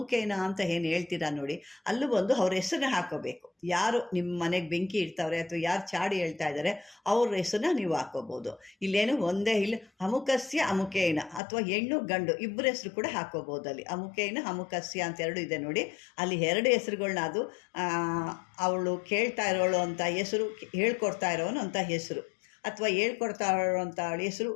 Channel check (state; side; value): drops out; right; at 11.4 s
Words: ಅಂತ ಏನು ಹೇಳ್ತೀರಾ ನೋಡಿ, ಅಲ್ಲೂ ಬಂದು ಅವ್ರ ಹೆಸರನ್ನ ಹಾಕೋಬೇಕು. ಯಾರು ನಿಮ್ಮ ಮನೆಗೆ ಬೆಂಕಿ ಇಡ್ತಾವ್ರೆ ಅಥವಾ ಯಾರು ಚಾಡಿ ಹೇಳ್ತಾ ಇದ್ದಾರೆ ಅವ್ರ ಹೆಸರನ್ನ ನೀವು ಹಾಕೋಬೋದು. ಇಲ್ಲೇನು ಒಂದೇ ಇಲ್ಲ, ಅಮುಕಸ್ಯ ಅಮುಕೇನ ಅಥವಾ ಹೆಣ್ಣು ಗಂಡು ಇಬ್ಬರ ಹೆಸರು ಕೂಡ ಹಾಕೋಬೋದು. ಅಲ್ಲಿ ಅಮುಕೇನ ಅಮುಕಸ್ಯ ಅಂತ ಎರಡು ಇದೆ ನೋಡಿ, ಅಲ್ಲಿ 2 ಹೆಸರುಗಳನ್ನ ಅದು ಅವಳು ಕೇಳ್ತಾ ಇರೋಳು ಅಂತ ಹೆಸರು, ಹೇಳ್ಕೊಡ್ತಾ ಇರೋನು ಅಂತ ಹೆಸರು, ಅಥವಾ ಹೇಳ್ಕೊಡ್ತಾ ಇರೋಂಥ ಹೆಸರು,